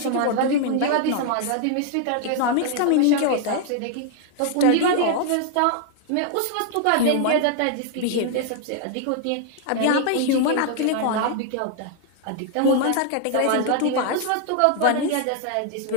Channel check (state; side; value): different; both; correlation 0.00